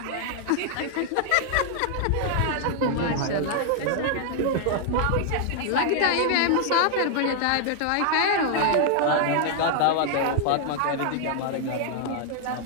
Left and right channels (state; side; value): different; both; correlation 0.00